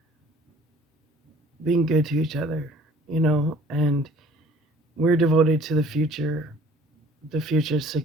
being good to each other, and we're devoted to the future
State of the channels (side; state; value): both; normal; correlation 0.53